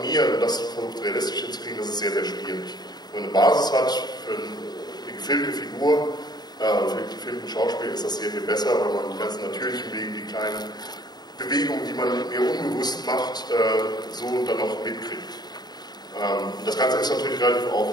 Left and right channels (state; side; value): late; right; 0.20 ms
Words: und das versucht realistisch hinzukriegen, das ist sehr, sehr schwierig. Wenn man eine Basis hat für eine gefilmte Figur, für einen gefilmten Schauspiel, ist das sehr viel besser, weil man die ganzen natürlichen Wege, die kleinen Bewegungen, die man mir unbewusst macht, so dann noch mitkriegt. Das Ganze ist natürlich relativ